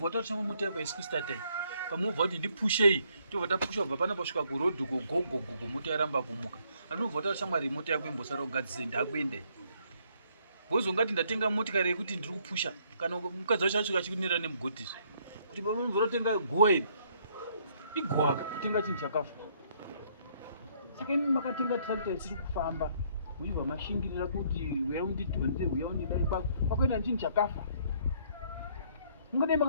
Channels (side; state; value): both; inverted; correlation -0.67